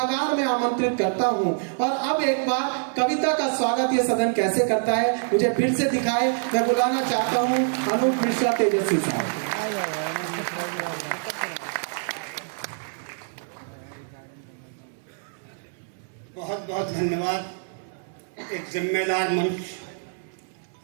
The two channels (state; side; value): silent; left; 61 dB below the other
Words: में आमंत्रित करता हूं, और अब एक बार कविता का स्वागत ये सदन कैसे करता है मुझे फिर से दिखाए। मैं बुलाना चाहता हूं अनूप मिश्रा तेजस्वी साहब। बहुत बहुत धन्यवाद। एक जिम्मेदार मंच